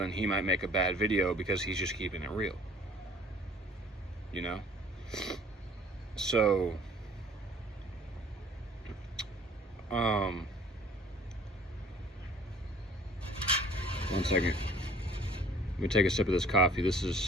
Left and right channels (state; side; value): normal; both; correlation 0.52